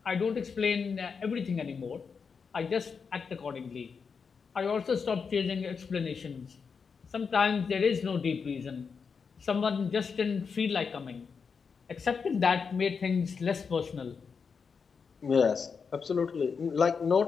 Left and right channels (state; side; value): quieter; right; 5.7 dB